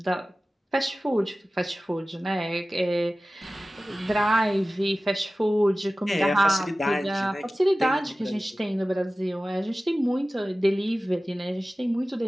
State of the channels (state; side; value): normal; both; correlation 0.96